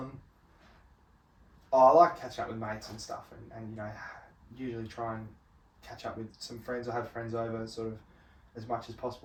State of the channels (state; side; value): identical; both; correlation 1.00